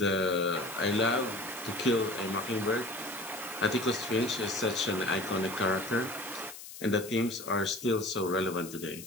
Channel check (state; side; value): noise; left; hiss, 13 dB below the sound